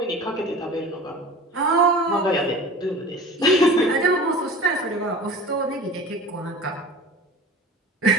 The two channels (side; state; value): both; normal; correlation 0.39